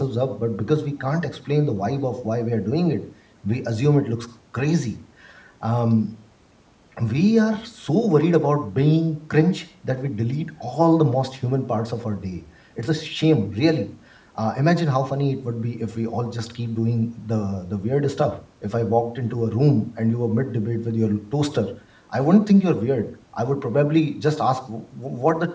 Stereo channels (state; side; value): identical; both; correlation 1.00